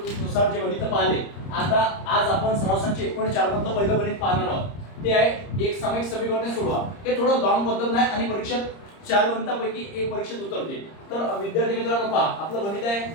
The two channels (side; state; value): right; late; 30 ms